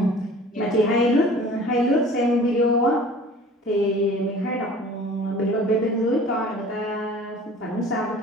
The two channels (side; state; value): both; normal; correlation 0.45